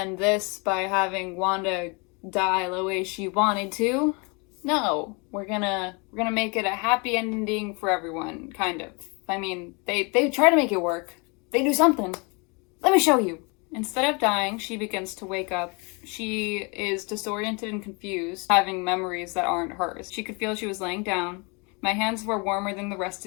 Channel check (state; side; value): quieter; right; 31.0 dB